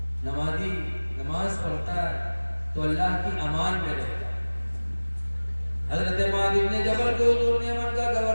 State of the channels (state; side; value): inverted; both; correlation -1.00